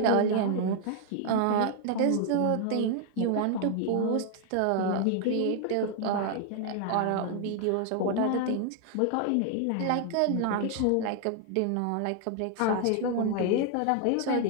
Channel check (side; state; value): both; different; correlation 0.00